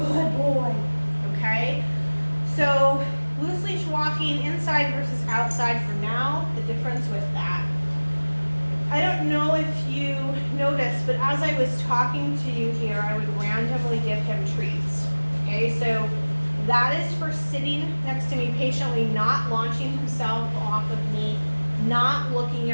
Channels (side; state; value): both; inverted; correlation -1.00